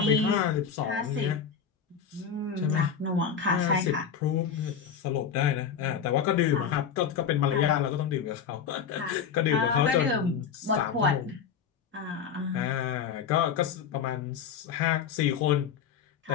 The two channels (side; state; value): right; quieter; 7.2 dB